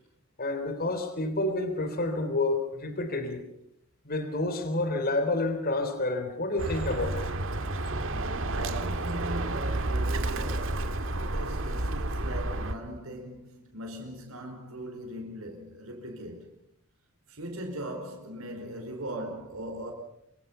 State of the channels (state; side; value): normal; both; correlation 0.29